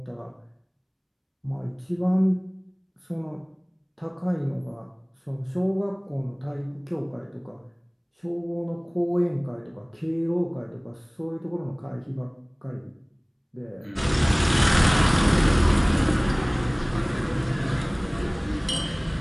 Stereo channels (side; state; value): both; identical; correlation 1.00